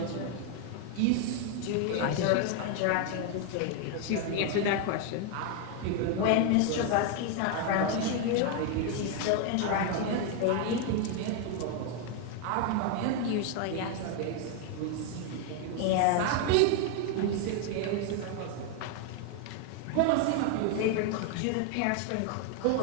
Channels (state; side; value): different; both; correlation 0.01